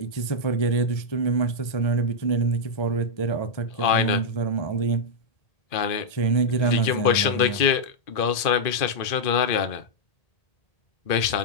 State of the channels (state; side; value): late; right; 2.4 ms